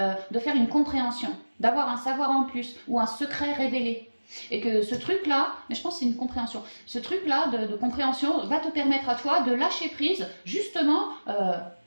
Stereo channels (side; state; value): both; inverted; correlation -1.00